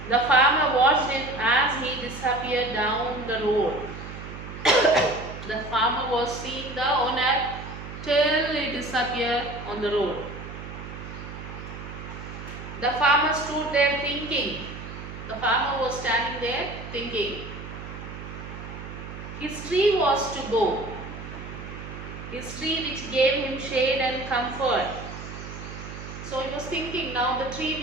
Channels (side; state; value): right; noise; hum, 11 dB below the sound